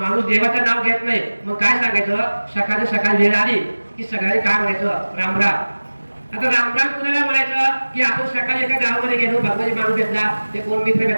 देवाचं नाव घेत नाही, मग काय सांगायचं, सकाळी सकाळी वेळ आली की सकाळी काय म्हणायचं, रामराम. आता रामराम कुणाला म्हणायचं की आपण सकाळी एका गावामध्ये गेलो, भगवान माणूस भेटला, ते कोण मित्र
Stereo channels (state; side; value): inverted; both; correlation -1.00